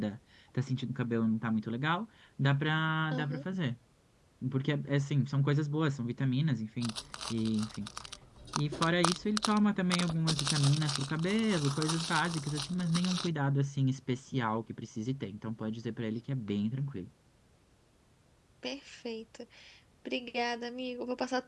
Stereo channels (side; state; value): both; identical; correlation 1.00